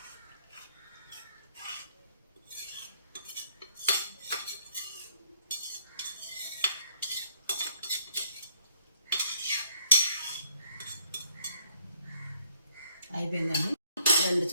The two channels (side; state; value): both; inverted; correlation -0.65